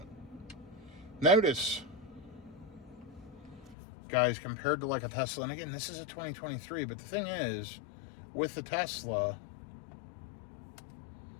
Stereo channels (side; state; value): right; drops out; at 3.8 s